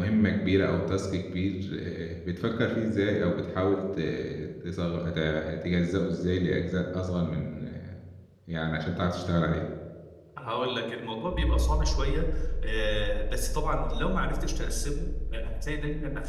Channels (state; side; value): identical; both; correlation 1.00